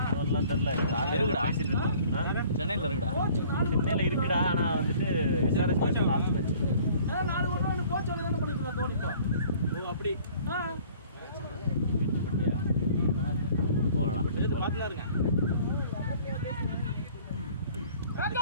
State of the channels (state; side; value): inverted; both; correlation -0.52